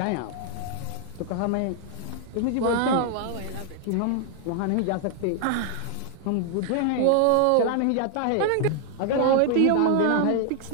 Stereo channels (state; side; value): different; both; correlation 0.00